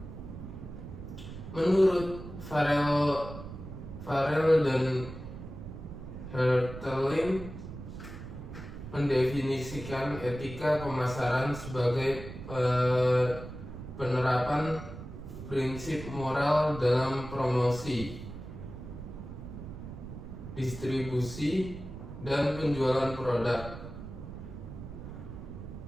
Menurut Farrell dan Hertelin mendefinisikan etika pemasaran sebagai penerapan prinsip moral dalam promosi, distribusi, dan penjualan produk.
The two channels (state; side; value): noise; right; rumble, 11 dB below the sound